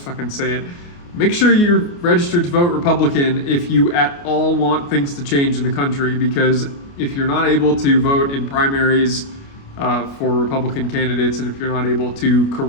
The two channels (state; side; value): late; right; 29 ms